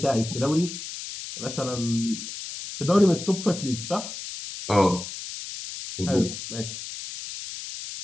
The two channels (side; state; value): left; noise; hiss, 9 dB below the sound